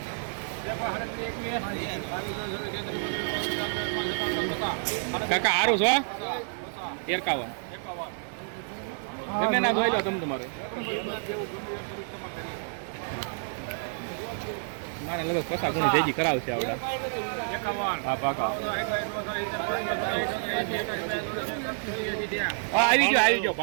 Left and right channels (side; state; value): left; silent; digital silence